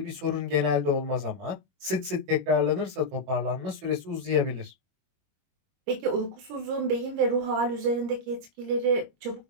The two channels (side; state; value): left; late; 21 ms